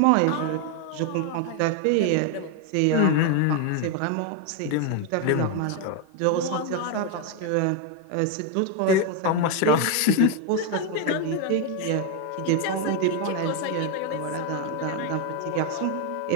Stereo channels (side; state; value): both; different; correlation 0.01